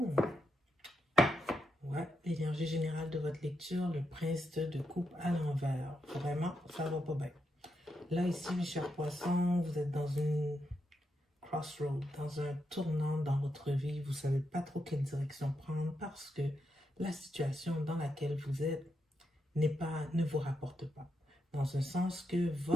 Ouais, l'énergie générale de votre lecture, le prince de coupe à l'envers. Vraiment, ça va pas bien. Là, ici, mes chers poissons, vous êtes dans une crossroad, dans un tournant dans votre vie. Vous ne savez pas trop quelle direction prendre parce que la situation dans laquelle vous êtes ne vous rapporte pas. Dans un sens que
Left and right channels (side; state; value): both; normal; correlation 0.83